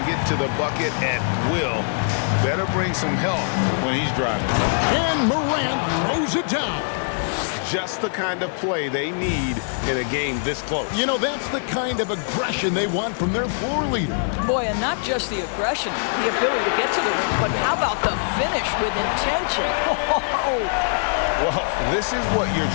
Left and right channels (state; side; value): silent; right; digital silence